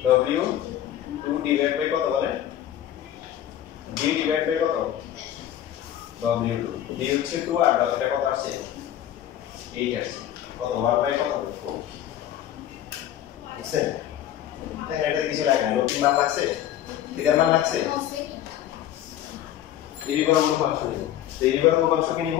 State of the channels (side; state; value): right; quieter; 11.7 dB